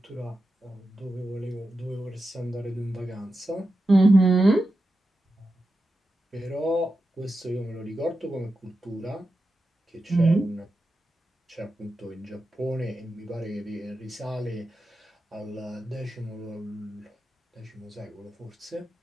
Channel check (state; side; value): normal; both; correlation 0.90